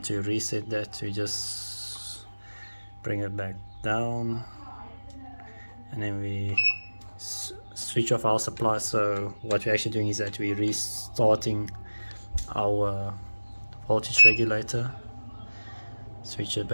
to reset that, we just bring it back down, and then we switch off our supply. So what we're actually doing is that we're restarting our voltage regulator, switch it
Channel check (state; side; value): inverted; both; correlation -1.00